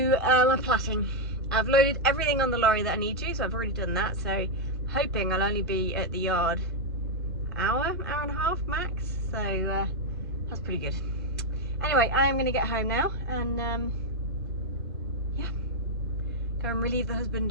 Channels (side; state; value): both; normal; correlation 0.00